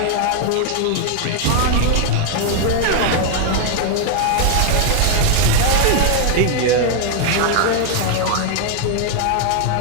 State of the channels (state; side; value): different; both; correlation 0.00